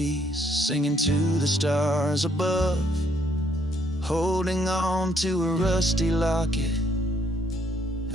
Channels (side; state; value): both; normal; correlation 0.69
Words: singing to the stars above, holding on to a rusty locket